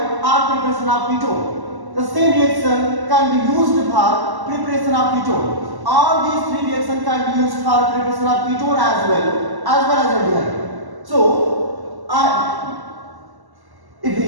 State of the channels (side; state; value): left; late; 1.1 ms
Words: or preparation of ketone. The same reaction can be used for preparation of ketone. All these three reactions can be used for preparation of ketone as well as aldehyde. So,